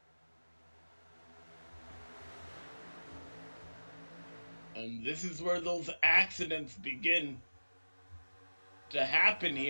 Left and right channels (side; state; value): both; inverted; correlation -1.00